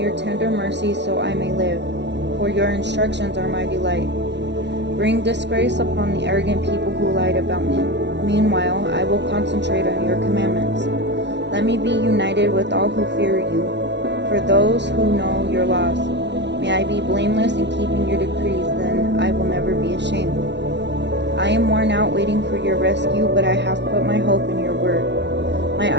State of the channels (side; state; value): left; late; 0.51 ms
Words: tender mercy so I may live, for your instructions are my delight. Bring disgrace upon the arrogant people who lied about me. Meanwhile, I will concentrate on your commandments. Let me be united with all who fear you, for those who know your laws. May I be blameless in keeping your decrees, then I will never be ashamed. I am worn out waiting for your rescue, but I have put my hope in your word. My